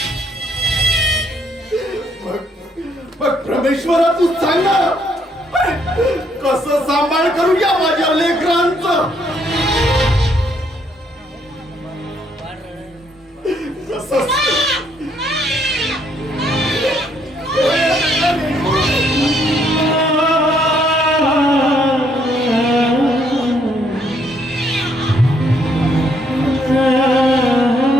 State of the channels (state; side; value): normal; both; correlation 0.70